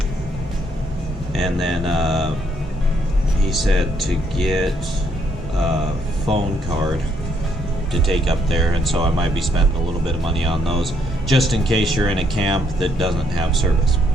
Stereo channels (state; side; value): normal; both; correlation 0.71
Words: and then he said to get a phone card to take up there, and so I might be spending a little bit of money on those just in case you're in a camp that doesn't have service.